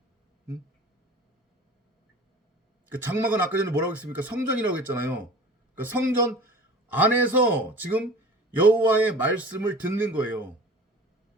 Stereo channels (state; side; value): normal; both; correlation 0.41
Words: 그러니까 그 장막은 아까 전에 뭐라고 했습니까? 성전이라고 했잖아요. 그러니까 성전 안에서 지금 여호와의 말씀을 듣는 거예요.